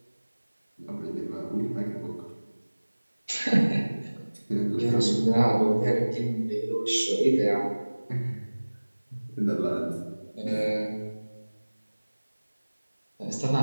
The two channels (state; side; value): inverted; both; correlation -1.00